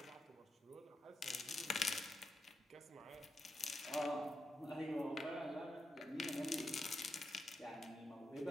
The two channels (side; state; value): both; normal; correlation 0.85